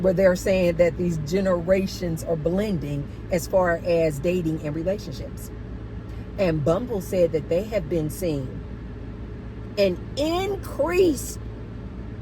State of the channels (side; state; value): both; identical; correlation 1.00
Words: they're saying that these generations are blending as far as dating and relationships. And Bumble said that they have been seeing an increased